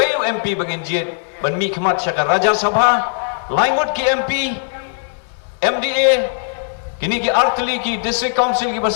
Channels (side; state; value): right; silent; digital silence